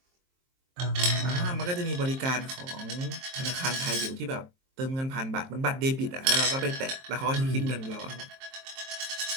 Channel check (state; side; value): late; left; 23 ms